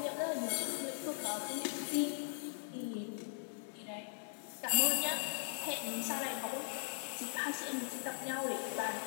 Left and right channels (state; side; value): silent; right; digital silence